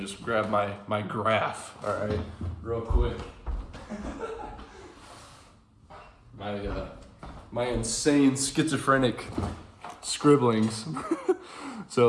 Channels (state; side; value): identical; both; correlation 1.00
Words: grab my graph, all right, real quick. My insane schizophrenic scribblings.